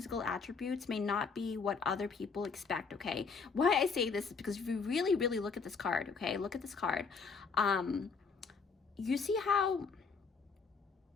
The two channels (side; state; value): right; quieter; 5.1 dB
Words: attributes may not be what other people expect, okay? Why I say this is because if you really look at this card, okay? Look at this card. You see how